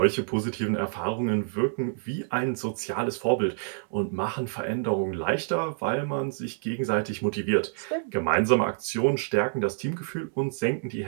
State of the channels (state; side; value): silent; left; digital silence